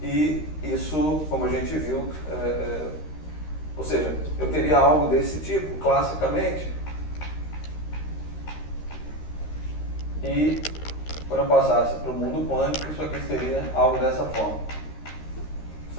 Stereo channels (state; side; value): late; right; 13 ms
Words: e isso, como a gente viu, ou seja, eu teria algo desse tipo, classicamente, e quando eu passasse para o mundo quântico, isso aqui seria algo dessa forma.